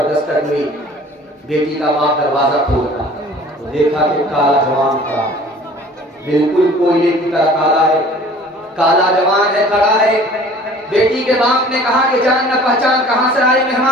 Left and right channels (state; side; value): normal; both; correlation 0.48